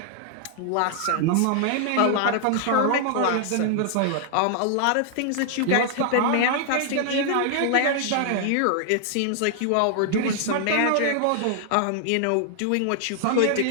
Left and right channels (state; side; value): different; both; correlation 0.00